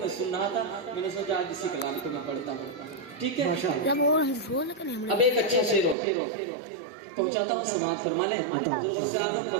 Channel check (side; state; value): left; drops out; at 6.0 s